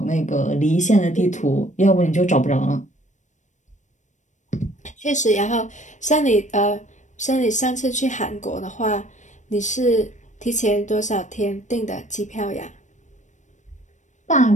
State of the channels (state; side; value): late; right; 0.35 ms